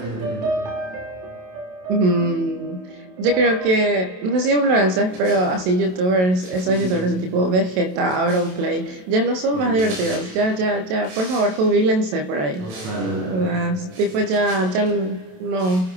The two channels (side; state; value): left; late; 27 ms